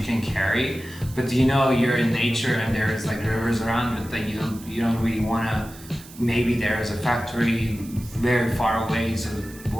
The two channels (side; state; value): right; noise; hiss, 19 dB below the sound